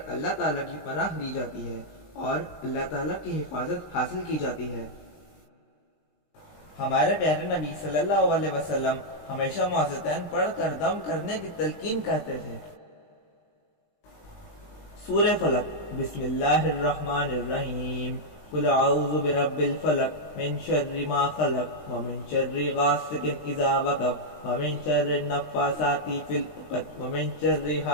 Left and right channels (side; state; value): right; late; 20 ms